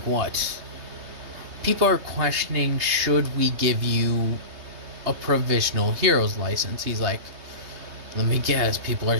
People are questioning, should we give you a provisional hero's license? He's like, let me guess, people are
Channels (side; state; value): left; late; 3.2 ms